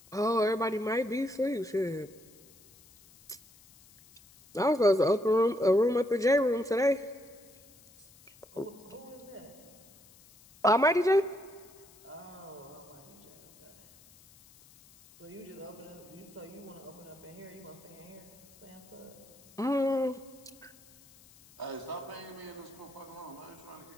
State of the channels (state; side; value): noise; left; hiss, 25 dB below the sound